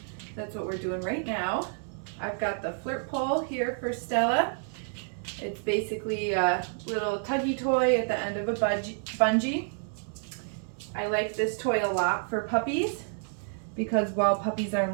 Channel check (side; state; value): left; silent; digital silence